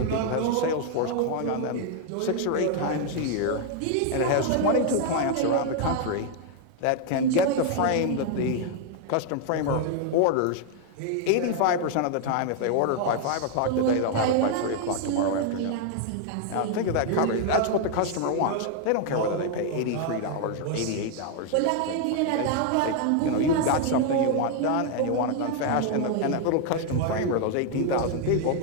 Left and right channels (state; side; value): different; both; correlation 0.00